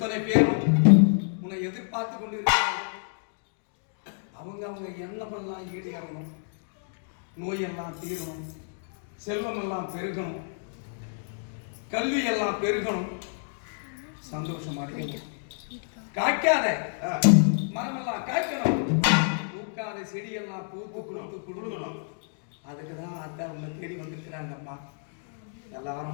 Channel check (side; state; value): right; silent; digital silence